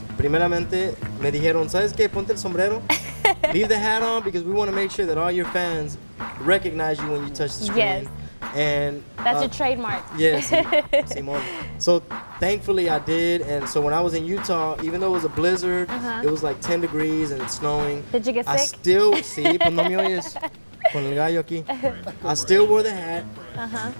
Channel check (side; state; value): both; inverted; correlation -1.00